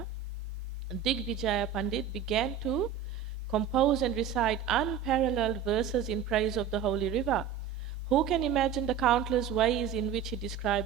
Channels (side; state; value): left; quieter; 8.0 dB